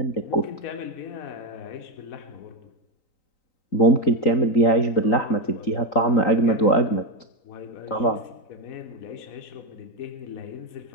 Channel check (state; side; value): late; right; 3.9 ms